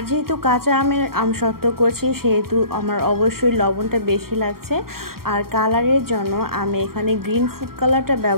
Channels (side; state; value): left; late; 0.93 ms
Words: যেহেতু কাঁচা আমের আমসত্ত্ব করছি সেহেতু আমার অবশ্যই লবণটা বেশি লাগছে। আর কালারের জন্য আমি এখানে গ্রিন ফুড কালারটা